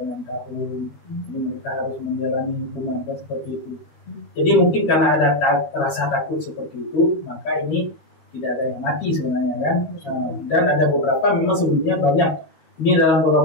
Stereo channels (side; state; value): right; late; 13 ms